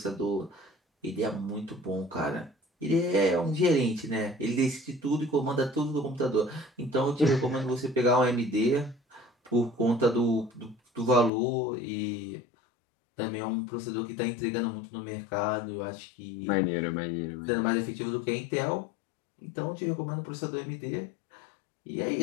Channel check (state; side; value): drops out; right; at 11.3 s